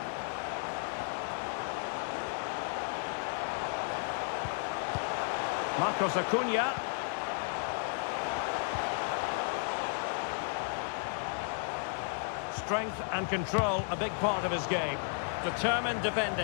Marcos Acuna. Strength and control, a big part of his game. Determined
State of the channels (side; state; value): right; silent; 55 dB below the other